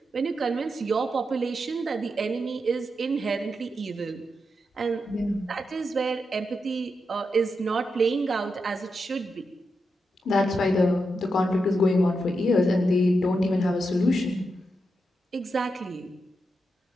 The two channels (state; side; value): normal; both; correlation 0.86